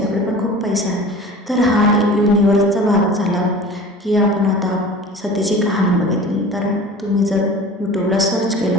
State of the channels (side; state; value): both; normal; correlation 0.39